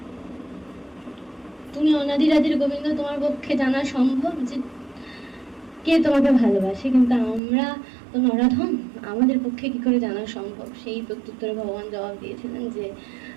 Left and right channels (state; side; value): drops out; left; at 7.4 s